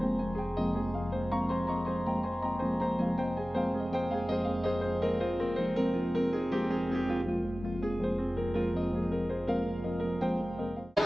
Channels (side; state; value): both; normal; correlation 0.97